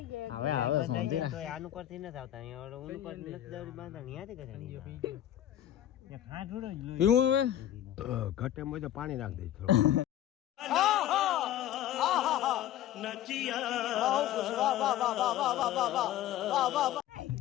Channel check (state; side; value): quieter; right; 12.3 dB